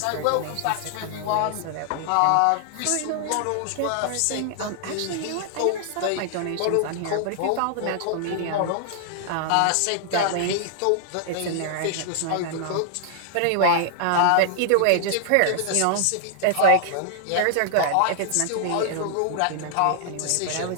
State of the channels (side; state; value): both; different; correlation -0.01